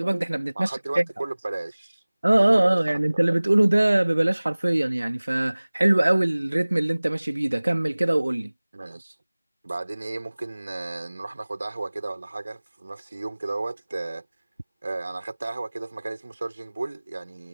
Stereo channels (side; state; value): both; inverted; correlation -1.00